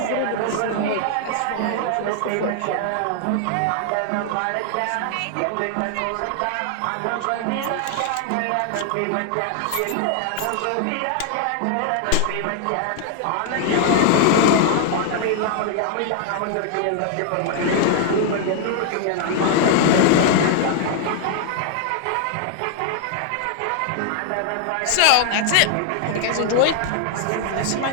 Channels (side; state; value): both; different; correlation 0.00